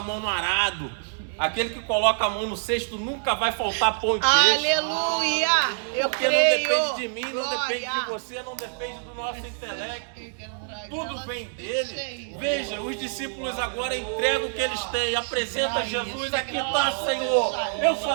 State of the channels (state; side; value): silent; left; digital silence